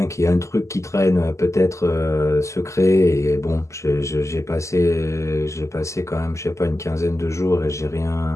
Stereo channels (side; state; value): right; late; 0.14 ms